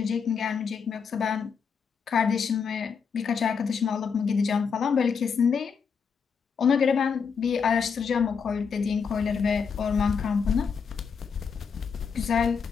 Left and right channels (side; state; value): right; quieter; 6.1 dB